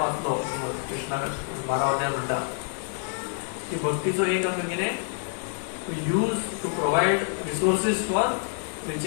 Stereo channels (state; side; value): silent; right; 55 dB below the other